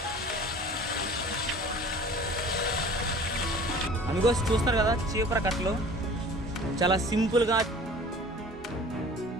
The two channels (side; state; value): both; normal; correlation 0.45